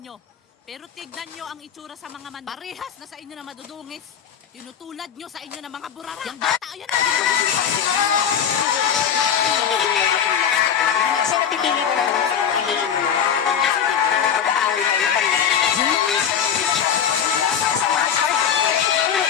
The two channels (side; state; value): right; quieter; 8.1 dB